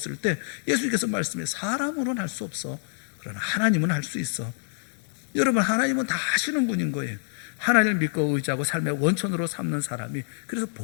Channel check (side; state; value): right; silent; 60 dB below the other